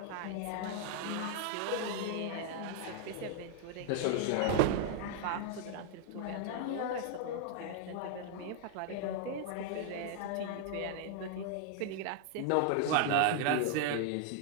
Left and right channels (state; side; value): different; both; correlation 0.00